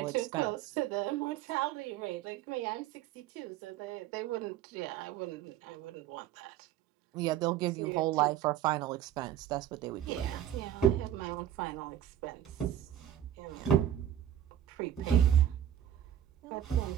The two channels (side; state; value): left; quieter; 10.9 dB